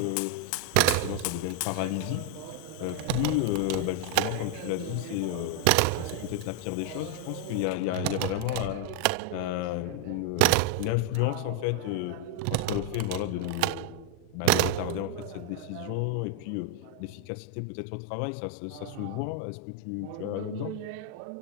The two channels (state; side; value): different; both; correlation 0.00